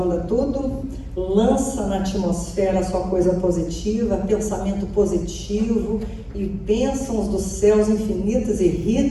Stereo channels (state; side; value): identical; both; correlation 1.00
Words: tudo, lança na atmosfera só coisa positiva, pensamento positivo e bênçãos dos céus infinitas e